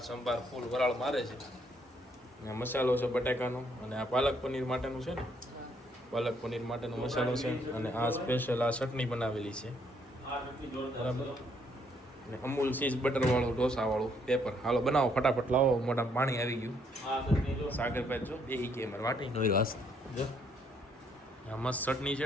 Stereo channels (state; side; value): normal; both; correlation 0.70